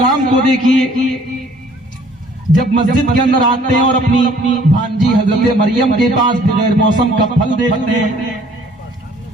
کو دیکھیے، جب مسجد کے اندر آتے ہیں اور اپنی بھانجی حضرت مریم کے پاس بغیر موسم کا پھل دیکھتے ہیں،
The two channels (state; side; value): normal; both; correlation 0.57